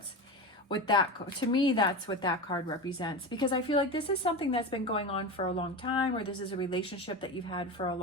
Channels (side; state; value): both; normal; correlation 0.23